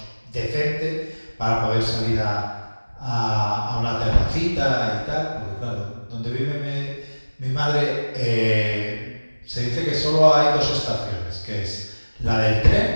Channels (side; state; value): both; inverted; correlation -1.00